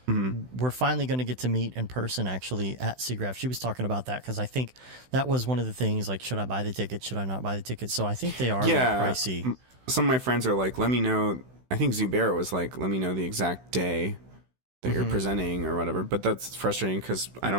we're finally going to get to meet in person actually at SIGGRAPH. She was talking about that because I think that was one of the things, like, should I buy the ticket? Should I not buy the ticket? So I think they are a little pricey. Some of my friends are like, let me know. I think Zubair was like, let me know the exact day that you're presenting or whatever, but that's frustrating because I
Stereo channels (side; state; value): left; late; 16 ms